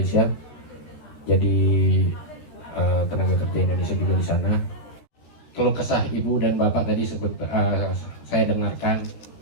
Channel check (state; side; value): late; right; 13 ms